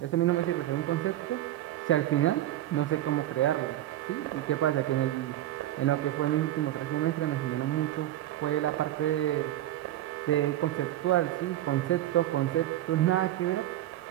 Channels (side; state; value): left; quieter; 13.7 dB